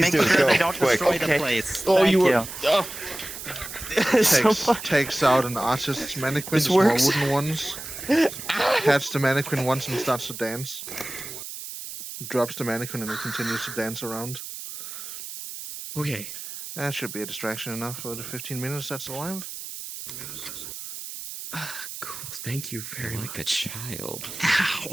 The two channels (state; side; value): noise; right; hiss, 10 dB below the sound